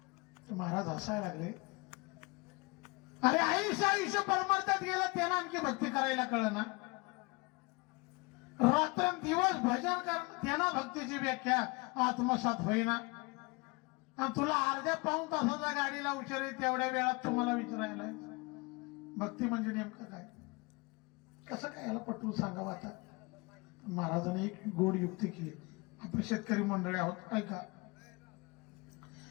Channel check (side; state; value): right; quieter; 27.1 dB